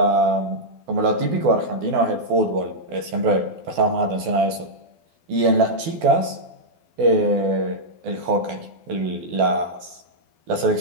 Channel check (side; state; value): left; late; 12 ms